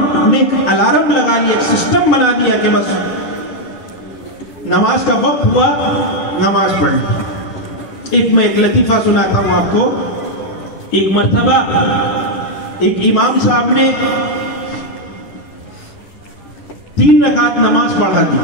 نے ایک الارم لگا لیا، ایک سسٹم بنا دیا کہ بس نماز کا وقت ہوا نماز پڑھیں۔ میں ایک لطیفہ سناتا ہوں آپ کو۔ ایک مرتبہ ایک امام صاحب نے 3 رکعت نماز پڑھا دی،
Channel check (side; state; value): right; late; 10 ms